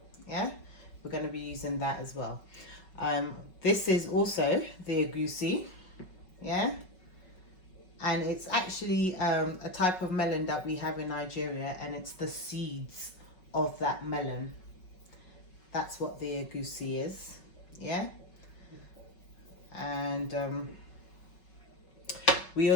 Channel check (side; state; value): right; late; 5.4 ms